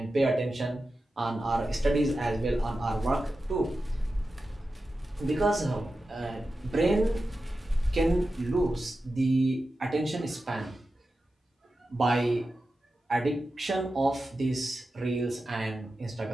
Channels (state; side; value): normal; both; correlation 0.92